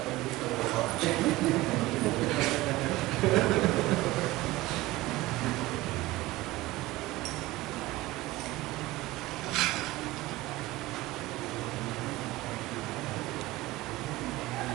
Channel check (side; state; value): left; quieter; 18.4 dB